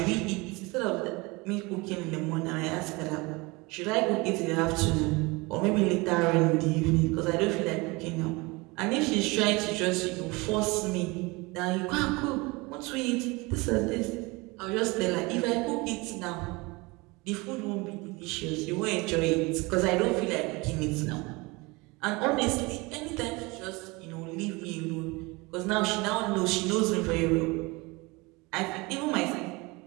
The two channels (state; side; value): quieter; left; 24.9 dB